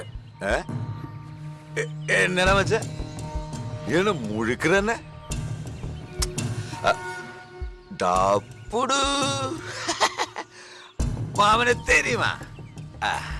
എന്നടാ മച്ച ഇവന് മുഴുക്കന്നെ ഡാപ്പുടു മാമനെ തെരിയുമാ.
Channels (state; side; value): identical; both; correlation 1.00